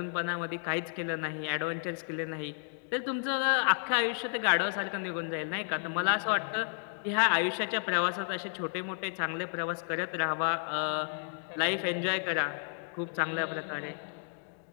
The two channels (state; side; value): silent; right; 56 dB below the other